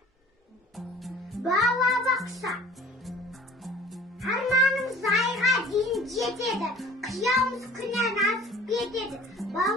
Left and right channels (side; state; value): both; normal; correlation 0.47